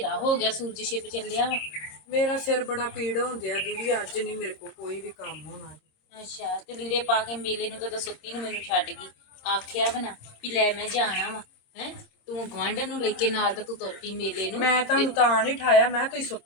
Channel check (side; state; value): right; late; 26 ms